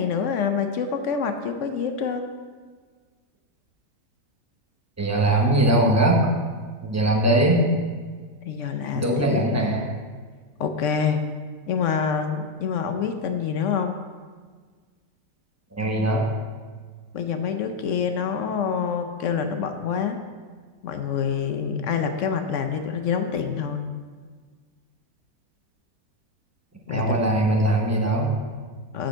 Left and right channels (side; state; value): both; normal; correlation 0.07